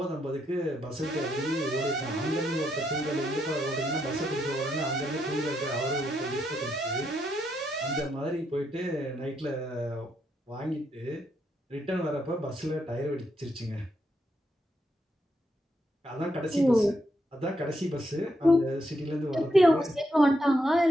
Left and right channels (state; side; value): normal; both; correlation 0.79